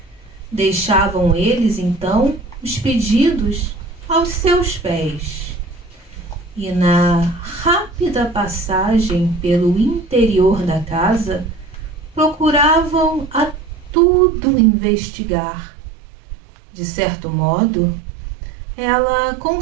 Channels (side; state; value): left; drops out; at 14.0 s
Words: Deixavam eles, então, os pedidos aos seus pés. E na rápida passagem pelo interior da casa, procuravam a tudo investigar. De certo modo, ela